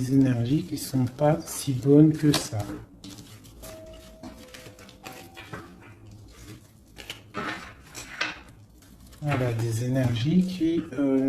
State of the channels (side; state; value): both; identical; correlation 1.00